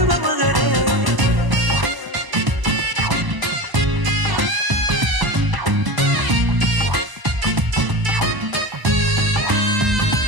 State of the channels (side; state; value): left; late; 1.0 ms